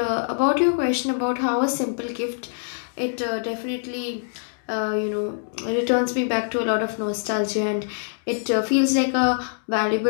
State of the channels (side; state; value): right; silent; digital silence